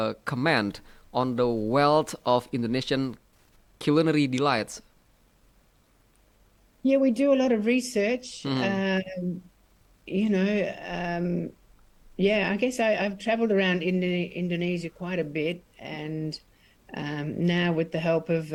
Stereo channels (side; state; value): both; identical; correlation 1.00